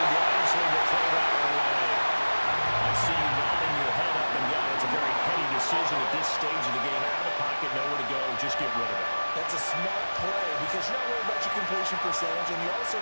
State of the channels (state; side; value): inverted; both; correlation -1.00